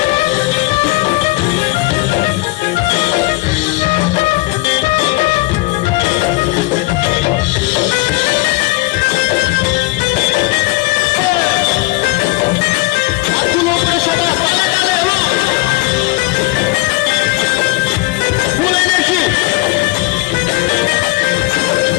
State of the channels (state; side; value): quieter; right; 22.2 dB